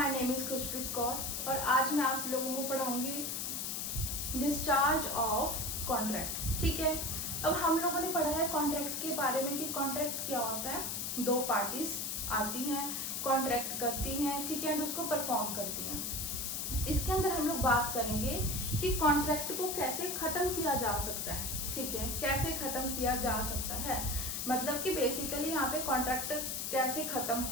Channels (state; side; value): noise; left; hiss, 2 dB below the sound